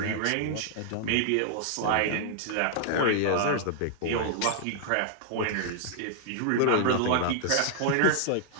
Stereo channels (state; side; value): different; both; correlation -0.01